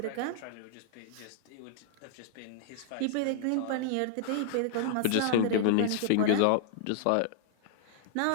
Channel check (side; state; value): both; different; correlation -0.01